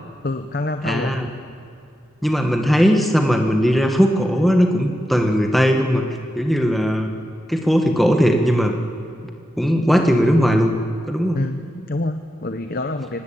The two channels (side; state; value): both; normal; correlation 0.89